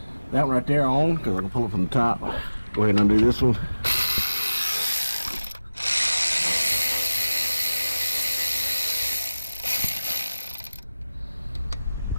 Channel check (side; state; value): both; inverted; correlation -0.96